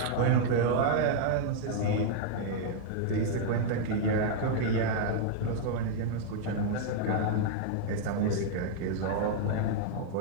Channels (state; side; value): different; both; correlation -0.01